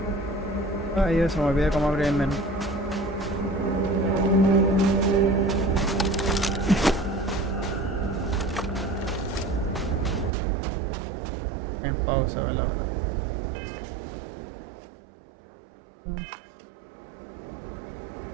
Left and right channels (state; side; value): drops out; left; at 10.3 s